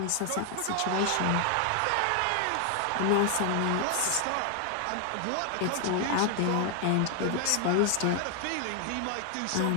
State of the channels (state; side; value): different; both; correlation 0.00